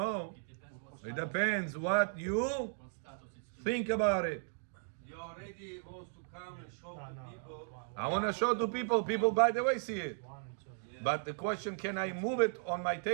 It depends what you think about it. You already wants to come and show to people. I want to show to people. People, by the way, see it. 1 and 2. But the question, can I move it on my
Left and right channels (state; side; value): silent; left; digital silence